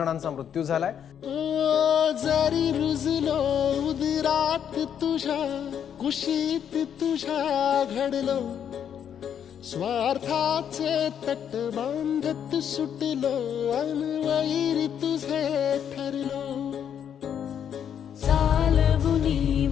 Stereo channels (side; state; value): right; quieter; 8.7 dB